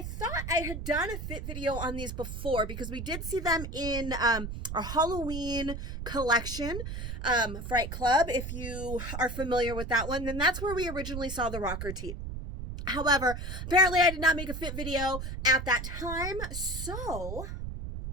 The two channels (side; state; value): right; noise; rumble, 6 dB below the sound